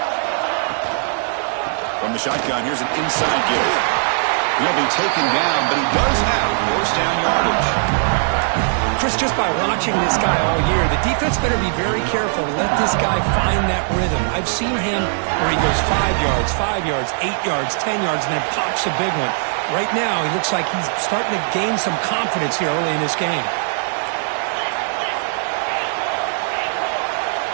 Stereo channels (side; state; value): left; silent; digital silence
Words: From the shotgun, here's an inside give. He'll be taken down, but he does have first down yardage. Chris, just by watching this guy all year, the defense better be very careful to let this guy find that rhythm. I've seen him where he goes 5 yards, 8 yards, 10 yards, and then pops a big one. Right now, he looks like he's starting to gain some confidence here early in this game.